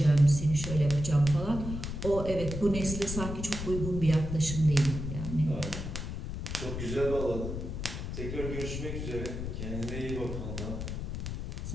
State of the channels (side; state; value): left; noise; rumble, 5 dB below the sound